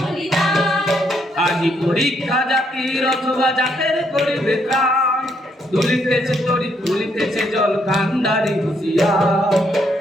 আজি পরীক্ষা জাতির অথবা জাতের করিবে ত্রাণ, তুলিতেছে তরি তুলিতেছে জল কান্ডারি হুঁশিয়ার।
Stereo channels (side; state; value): both; normal; correlation 0.73